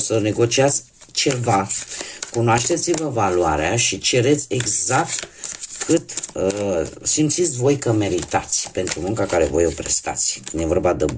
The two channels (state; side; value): identical; both; correlation 1.00